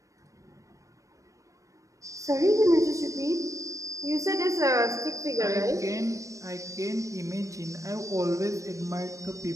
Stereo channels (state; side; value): late; left; 0.16 ms